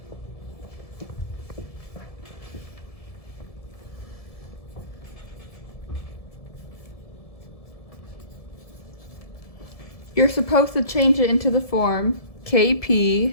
You're supposed to change it into the form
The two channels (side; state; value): right; late; 1.7 ms